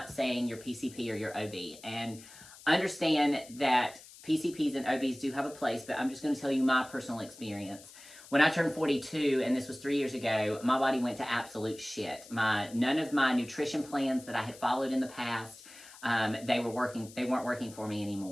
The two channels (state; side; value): noise; left; hiss, 19 dB below the sound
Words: saying your PCP or your OB. And understand that PCPs and OBs do have a place, but I'm just going to tell you my personal experience. When I turned 42, and this was 3 years ago, my body went to absolute shit. None of my nutrition plans that I had followed in the past, they weren't working for me